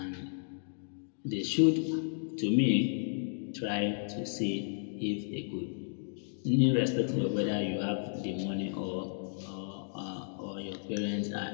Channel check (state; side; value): silent; right; digital silence